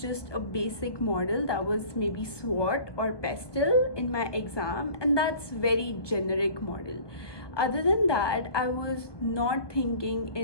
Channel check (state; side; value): late; right; 1.2 ms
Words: just a basic model that was maybe SWOT or PESTEL in my exam, and that's very generic model. Other than that, I was not